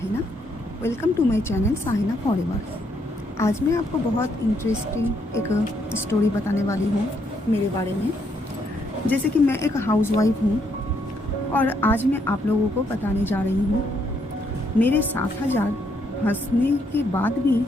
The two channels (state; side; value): normal; both; correlation 0.73